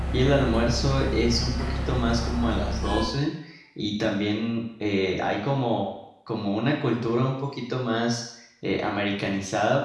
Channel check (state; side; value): identical; both; correlation 1.00